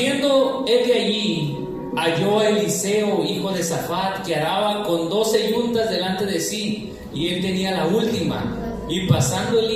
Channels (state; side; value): identical; both; correlation 1.00